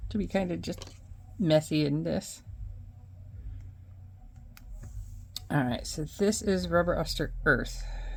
to be kind of just messy in this. All right, so this is Rubber Oster Earth.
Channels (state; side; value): identical; both; correlation 1.00